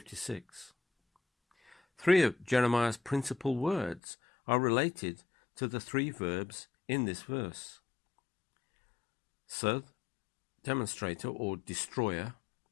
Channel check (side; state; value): right; drops out; at 4.0 s